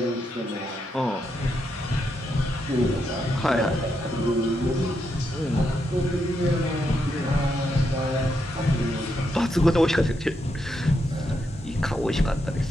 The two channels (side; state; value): both; normal; correlation 0.81